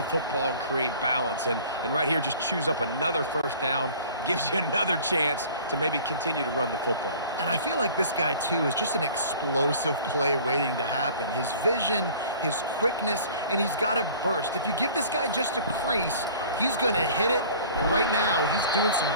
football and create balance. And right here, just choose up another first down, gives you another chance to maybe continue to run the football. And I feel like this guy, too, is just an explosive play waiting to happen. His vision, his quickness, and he's got a burst. If you give this guy just a crease, he's going to hit it, And right now, he's doing some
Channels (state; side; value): inverted; both; correlation -0.47